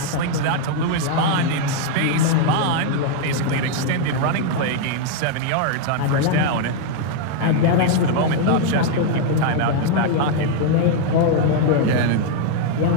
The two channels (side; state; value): both; different; correlation 0.00